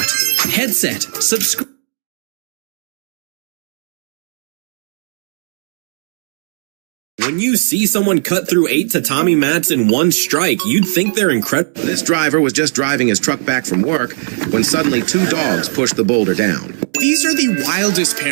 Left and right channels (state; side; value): silent; left; digital silence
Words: Headset, subscribe. When you see someone cut through 8 tatami mats in one strike, you'd think they're incredible. This driver was just driving his truck back from work when suddenly 2 dogs pushed the boulder down. These are the wildest